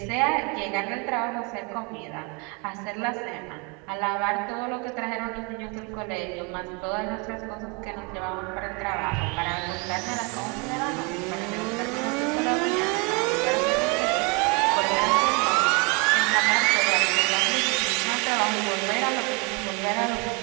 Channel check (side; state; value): left; quieter; 30.5 dB